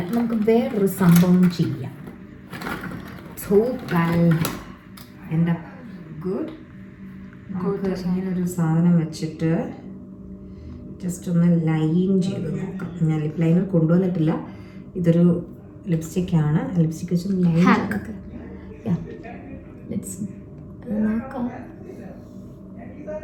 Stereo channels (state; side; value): identical; both; correlation 1.00